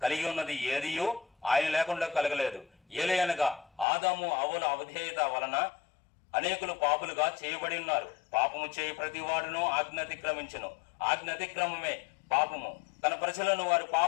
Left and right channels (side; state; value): right; drops out; at 3.9 s